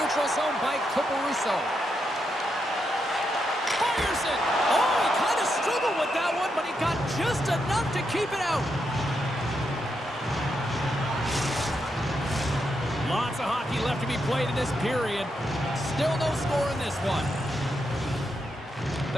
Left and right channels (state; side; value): normal; both; correlation 0.82